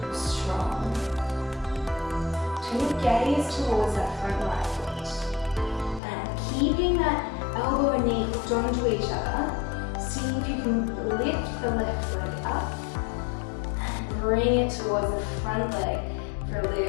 strong. Turn your gaze towards that front right foot. And keeping that elbow and knee hooked onto each other, see if you can lift the left leg up and bring it towards the front leg for a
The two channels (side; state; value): right; drops out; at 6.0 s